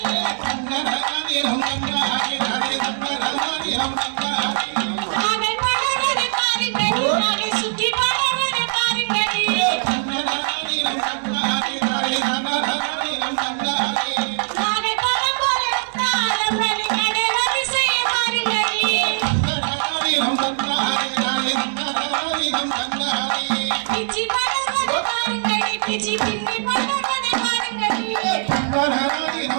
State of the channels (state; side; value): silent; left; 65 dB below the other